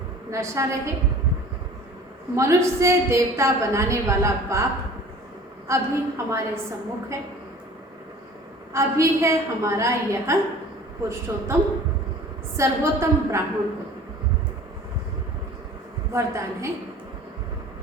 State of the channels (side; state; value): both; normal; correlation 0.45